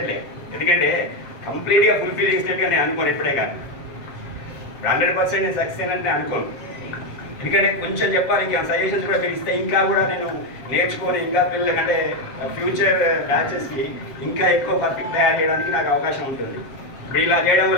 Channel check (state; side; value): late; right; 7.6 ms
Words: ఎందుకంటే కంప్లీట్గా ఫుల్ఫిల్ చేసినట్టుగా నేను అనుకోను ఎప్పుడే, కానీ 100% నేను సక్సెస్ అయినట్టు నేను అనుకోను. ఎందుకంటే కొంచెం చెప్పాలి, ఇంకా సజెషన్స్ కూడా పిలిస్తే ఇంకా కూడా నేను నేర్చుకొని ఇంకా పిల్లలకంటే ఫ్యూచర్ బ్యాచెస్కి ఇంకా ఎక్కువ పర్ఫెక్ట్ తయారు చేయడానికి నాకు అవకాశం ఉంటుంది. ఇప్పుడు ఇలా చేయడం